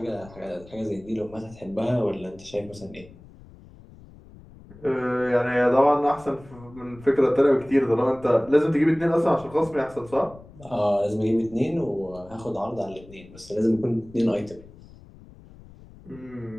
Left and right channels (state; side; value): noise; left; rumble, 21 dB below the sound